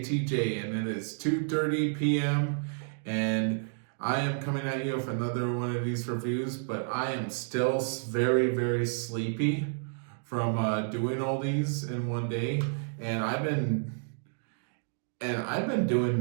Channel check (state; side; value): silent; left; digital silence